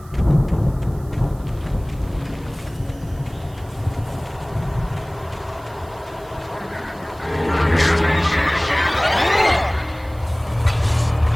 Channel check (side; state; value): right; noise; hiss, 27 dB below the sound